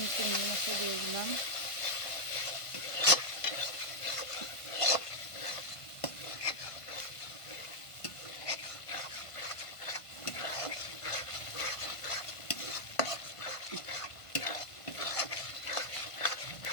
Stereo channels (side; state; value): right; late; 1.5 ms